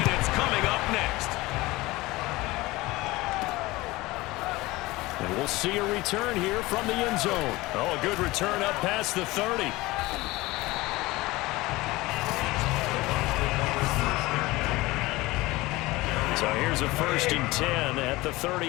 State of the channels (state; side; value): quieter; right; 20.3 dB